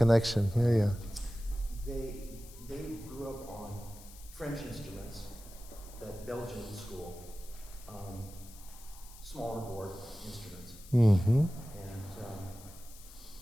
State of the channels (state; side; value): noise; left; hiss, 19 dB below the sound